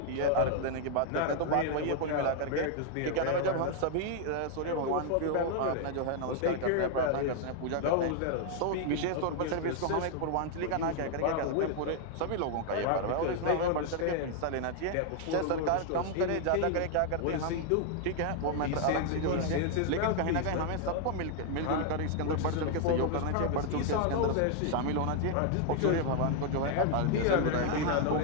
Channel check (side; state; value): both; different; correlation 0.00